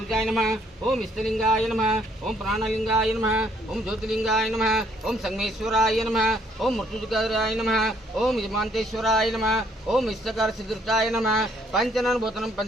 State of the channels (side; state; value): both; normal; correlation 0.66